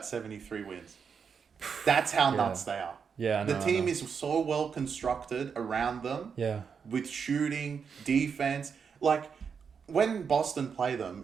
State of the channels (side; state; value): left; quieter; 6.3 dB